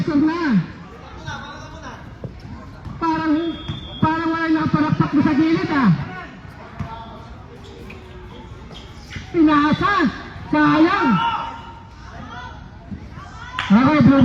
na. Parang wala nakaparakpak mo sa gilid ah. Pinasa. Sayang. Okay, blue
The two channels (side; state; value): both; identical; correlation 1.00